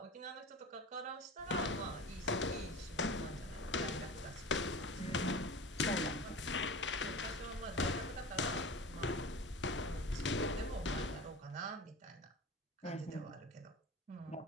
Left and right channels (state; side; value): normal; both; correlation 0.33